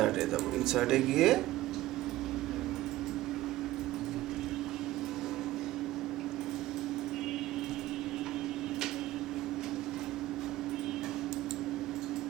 যাবো, ইনসার্টে গিয়ে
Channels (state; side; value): quieter; left; 16.2 dB